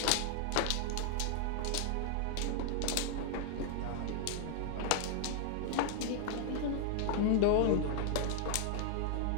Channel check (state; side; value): different; both; correlation 0.00